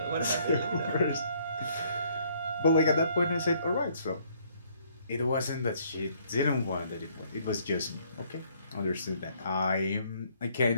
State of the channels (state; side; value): inverted; both; correlation -0.64